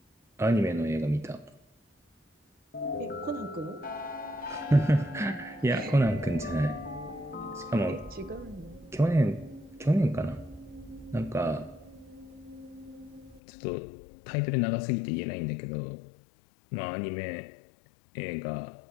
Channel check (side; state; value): right; drops out; at 13.4 s